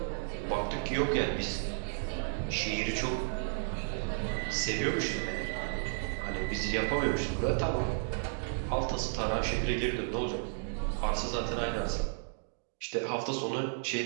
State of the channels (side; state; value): left; silent; digital silence